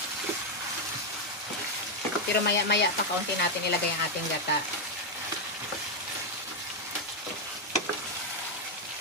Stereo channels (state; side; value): normal; both; correlation 0.01